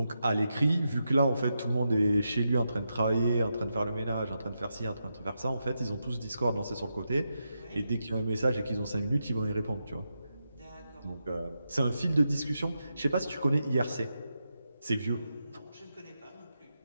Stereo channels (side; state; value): both; inverted; correlation -0.86